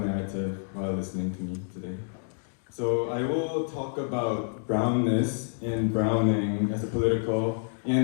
while listening to me today. So I will talk about brownness and browning as a political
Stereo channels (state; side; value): silent; right; digital silence